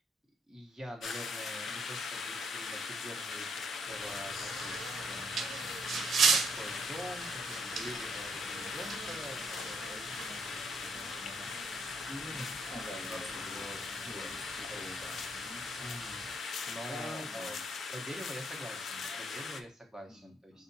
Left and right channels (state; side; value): normal; both; correlation 0.70